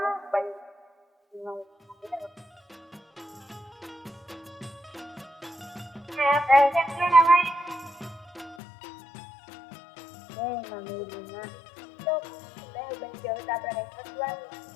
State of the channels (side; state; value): right; drops out; at 8.6 s